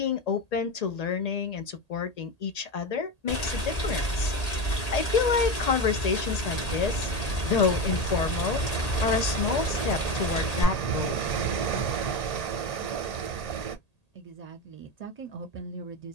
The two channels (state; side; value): late; right; 1.8 ms